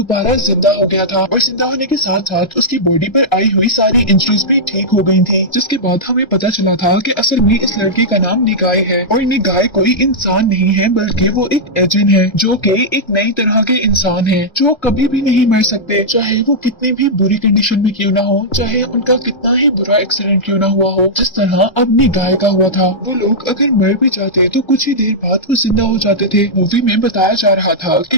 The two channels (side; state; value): right; late; 1.3 ms